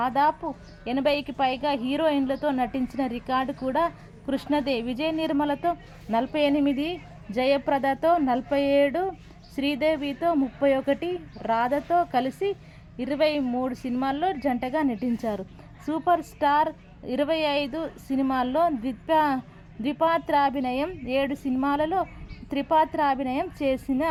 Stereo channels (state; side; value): identical; both; correlation 1.00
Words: 80కి పైగా హీరోయిన్లతో నటించిన రికార్డు కూడా కృష్ణదే. విజయ నిర్మలతో 48, జయప్రదతో 47, శ్రీదేవితో 31, రాధతో కలిసి 23 సినిమాల్లో జంటగా నటించారు. సూపర్ స్టార్ 25 సినిమాల్లో ద్విపాత్రాభినయం, 7 సినిమాలలో త్రిపాత్రాభినయం చేసిన